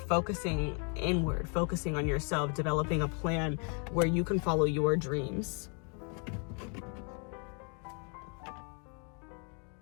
inward, focusing on yourself, developing a plan where you can follow your dreams.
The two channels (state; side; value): quieter; right; 38.3 dB